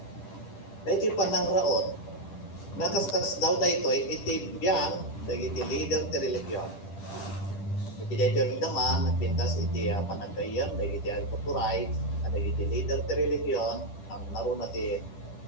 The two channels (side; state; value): right; late; 10 ms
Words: Dahil iti panangraot, nakaskas daw dahito iti biyang dahil iti leader ti religion. Iti dahito naman, nagpintas iti panagayam dahil iti agputuray, dahil iti leader ti religion, ang naroon na ti